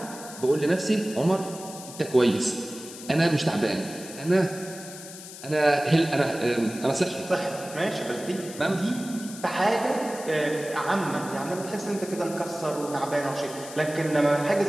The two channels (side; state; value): left; noise; hiss, 14 dB below the sound